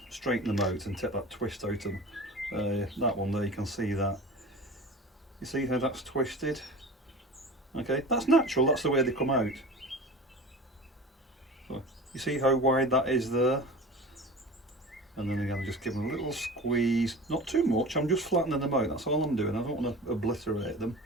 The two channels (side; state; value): both; normal; correlation 0.35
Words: straighten them out and take that twist out of them. That one there, you can see that. You see how that's twisted? Okay, that's natural, that's the way they come out. So, you see how wide that is there? And then again, just give them a little squeeze, not too much, I'm just flattening them out, that's all I'm doing, I don't want to obliterate them.